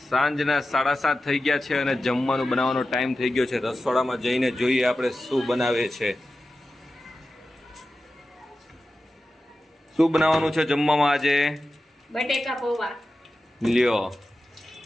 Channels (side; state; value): both; normal; correlation 0.93